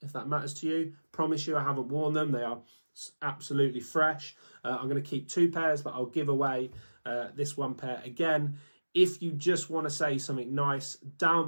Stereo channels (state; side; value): inverted; both; correlation -1.00